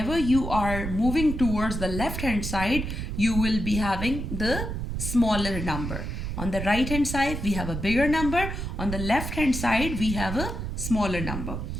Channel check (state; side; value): noise; right; rumble, 4 dB below the sound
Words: you are moving towards the left hand side you will be having the smaller number. On the right hand side we have a bigger number, on the left hand side we have a smaller number.